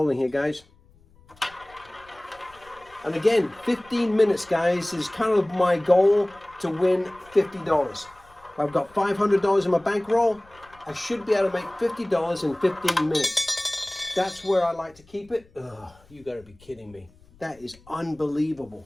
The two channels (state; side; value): noise; left; rumble, 28 dB below the sound